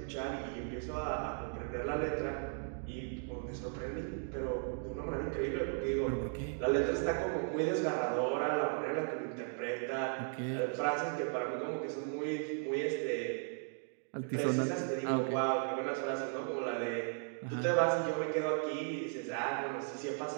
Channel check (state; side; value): silent; left; 53 dB below the other